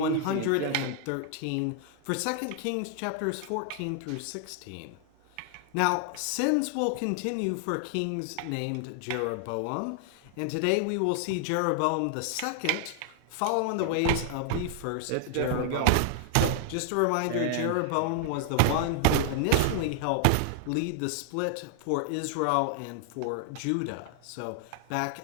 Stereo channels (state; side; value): different; both; correlation 0.00